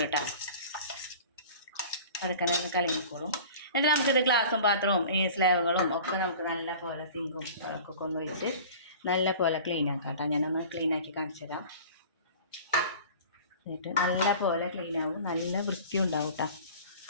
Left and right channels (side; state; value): both; inverted; correlation -0.41